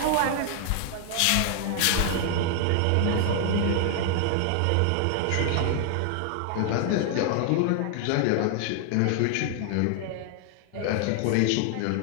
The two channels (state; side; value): different; both; correlation 0.00